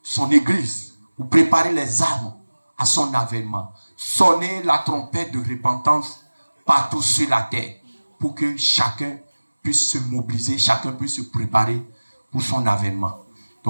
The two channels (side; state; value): both; inverted; correlation -1.00